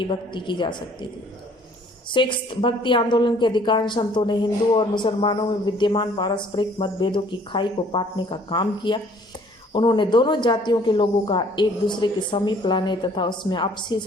भक्ति की जा सकती थी। सिक्स्थ, भक्ति आंदोलन के अधिकांश संतों ने हिंदू और मुसलमानों में विद्यमान पारस्परिक मतभेदों की खाई को पाटने का काम किया। उन्होंने दोनों जातियों के लोगों का एक दूसरे के समीप लाने तथा उसमें आपसी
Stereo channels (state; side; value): normal; both; correlation 0.57